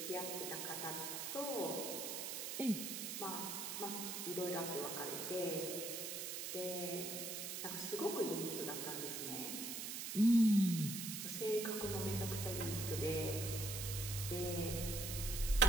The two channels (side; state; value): right; noise; hiss, 4 dB below the sound